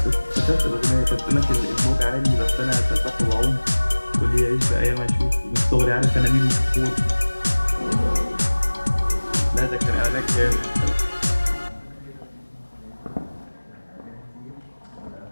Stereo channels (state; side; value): inverted; both; correlation -1.00